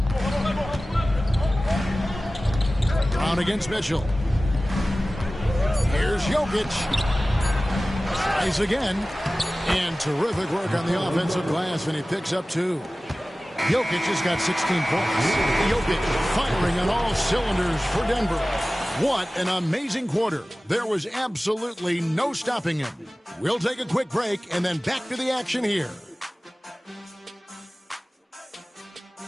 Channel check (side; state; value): both; normal; correlation 0.97